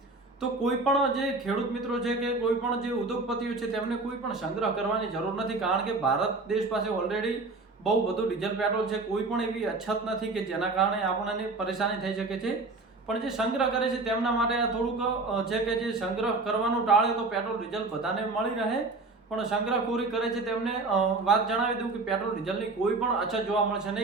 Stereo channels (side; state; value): left; quieter; 3.5 dB